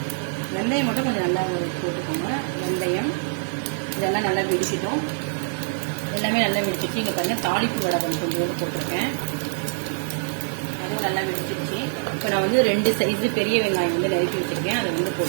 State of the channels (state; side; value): silent; left; digital silence